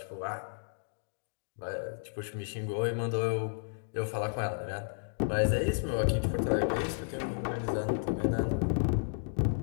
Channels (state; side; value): silent; right; digital silence